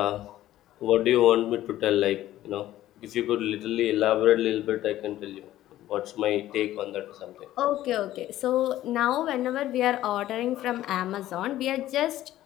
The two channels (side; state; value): right; quieter; 14.0 dB